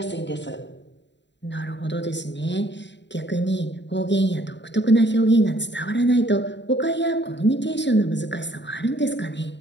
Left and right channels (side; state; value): right; late; 0.52 ms